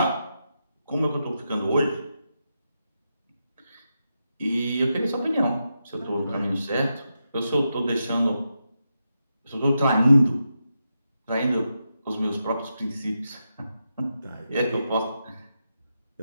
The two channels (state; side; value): inverted; both; correlation -0.87